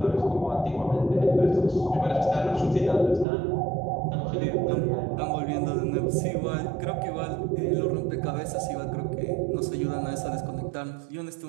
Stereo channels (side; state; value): left; drops out; at 3.2 s